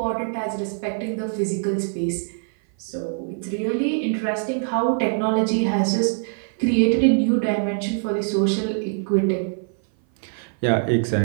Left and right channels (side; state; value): left; silent; 57 dB below the other